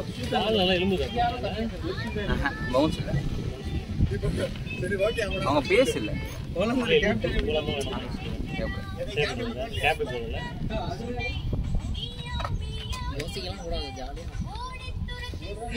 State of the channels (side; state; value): both; identical; correlation 1.00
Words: பவுன்ஸ் இல்ல, அவங்க பேஸ் இல்ல. யோசிக்கலாம் கூடாது, ஜாலியா